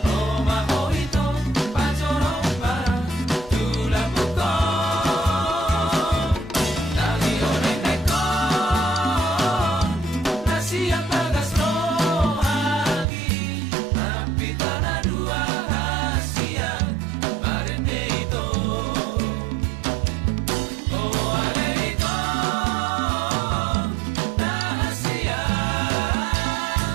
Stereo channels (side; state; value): left; drops out; at 13.1 s